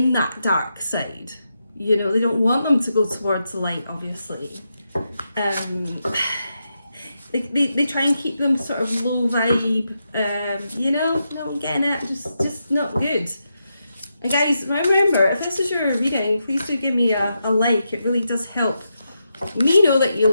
that dark side. You know, they don't want them to go towards the light, obviously. They try and keep them sort of low vibe, you know, not getting it, just not good. And guys, remember, if this is your reading, please do give me a like. It really does help me know that you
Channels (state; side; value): inverted; both; correlation -0.85